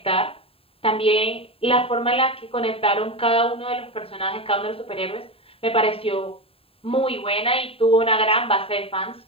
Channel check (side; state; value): right; late; 0.27 ms